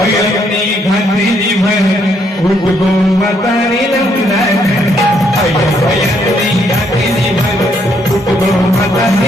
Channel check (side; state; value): both; normal; correlation 0.72